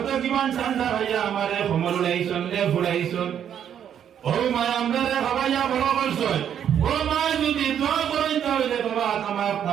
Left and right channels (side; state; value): left; quieter; 9.2 dB